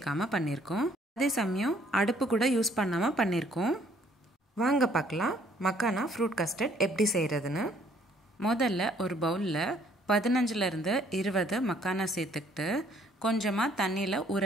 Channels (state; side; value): normal; both; correlation 0.63